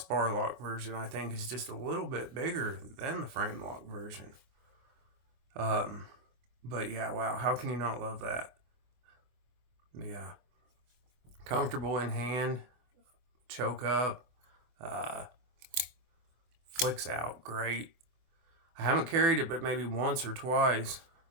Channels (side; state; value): left; late; 24 ms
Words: lock version I think is just a little bit bigger than the frame lock version. But yeah, wow, how can you not love that? Yeah. Comfortable in hand, choke up, flicks out great. I haven't carried it but maybe once or twice.